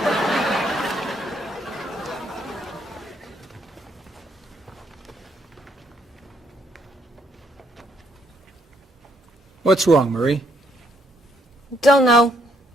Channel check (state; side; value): normal; both; correlation 0.71